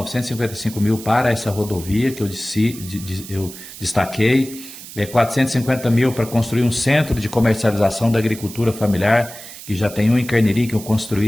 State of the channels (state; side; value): noise; right; hiss, 14 dB below the sound